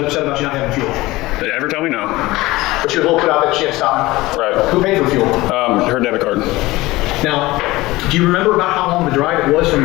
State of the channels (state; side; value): quieter; right; 19.4 dB